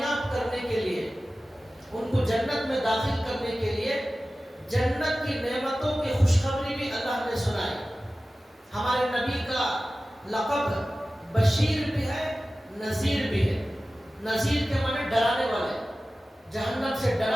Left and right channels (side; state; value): both; normal; correlation 0.96